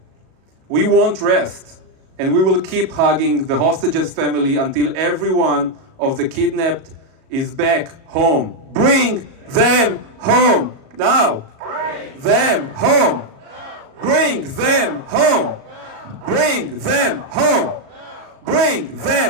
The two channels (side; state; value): left; late; 37 ms